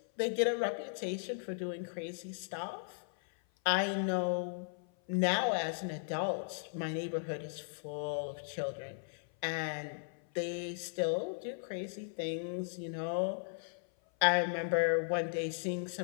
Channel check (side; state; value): right; silent; 53 dB below the other